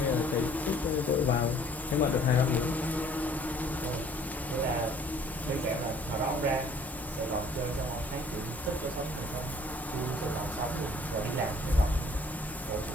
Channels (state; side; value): normal; both; correlation 0.56